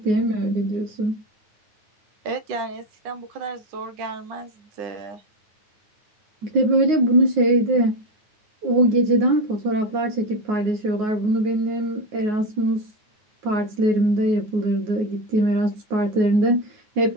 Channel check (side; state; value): left; late; 9.5 ms